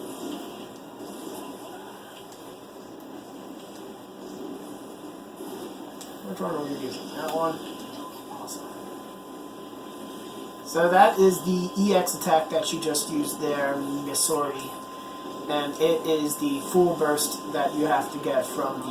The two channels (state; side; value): identical; both; correlation 1.00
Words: Which one are we using? That one? Awesome. So that is the EX attack that you just used there, Missouri. And it is the full burst that you have to get from